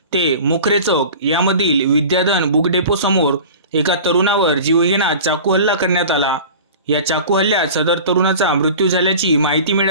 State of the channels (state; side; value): inverted; both; correlation -0.38